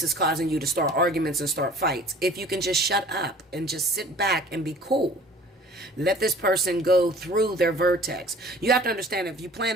is causing you to start arguments and start fights. If you can just shut up and just sit back and be cool, let this person go through their vertex. You have to understand, if you plan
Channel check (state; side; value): normal; both; correlation 0.48